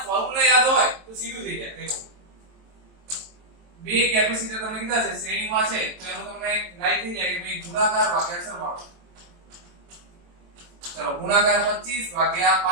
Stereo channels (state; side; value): late; left; 23 ms